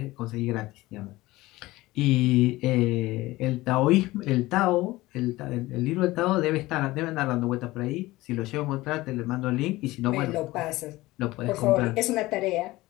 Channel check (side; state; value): right; quieter; 18.8 dB